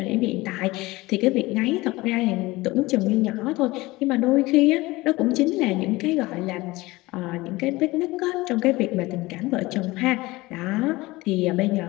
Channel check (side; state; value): right; quieter; 20.5 dB